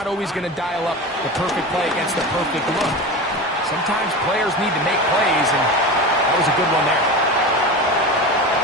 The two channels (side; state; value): both; normal; correlation 0.27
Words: always going to dial up the perfect play against the perfect look. Sometimes players need to make plays, and that was a good one there.